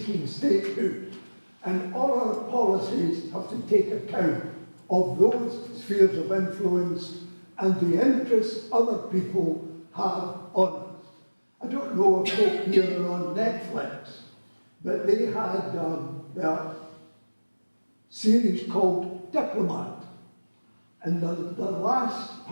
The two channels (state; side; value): inverted; both; correlation -1.00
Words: statehood. And all our policies have to take account of those spheres of influence and the interests other people have on us. I don't know if folk here are on Netflix, but they had a series called Diplomat. And the last